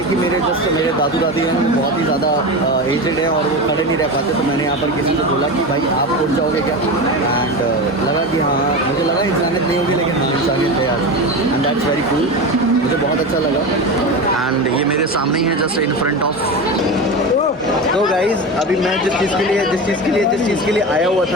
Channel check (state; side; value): normal; both; correlation 0.23